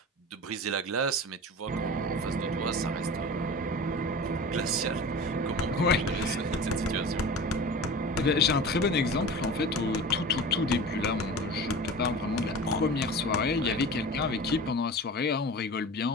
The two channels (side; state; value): both; normal; correlation 0.35